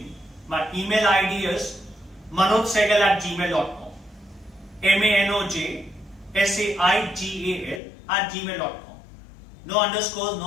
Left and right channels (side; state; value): right; drops out; at 7.8 s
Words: My email ID is manojsehgal@gmail.com. manojsehgal@gmail.com. No underscores,